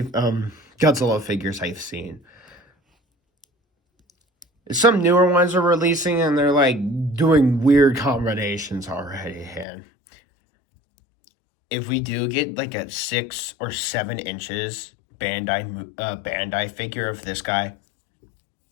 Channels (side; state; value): right; drops out; at 9.7 s